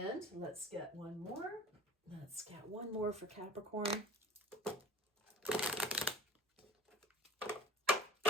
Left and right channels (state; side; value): normal; both; correlation 0.41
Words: let's get one more. Let's get one more for Capricorn.